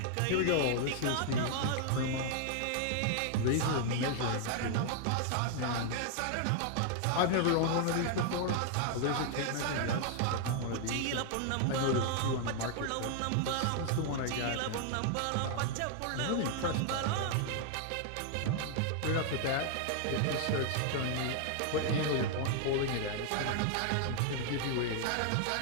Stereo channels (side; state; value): both; different; correlation 0.00